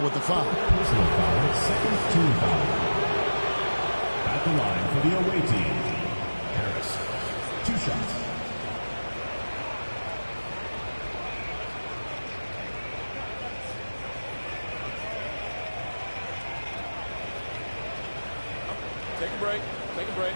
with the foul. Personal foul, second team foul. At the line for the away team, Harris. 2 shots. Take a break. Take a break.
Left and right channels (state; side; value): inverted; both; correlation -1.00